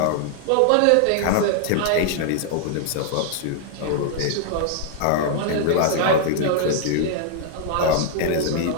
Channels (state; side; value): different; both; correlation 0.00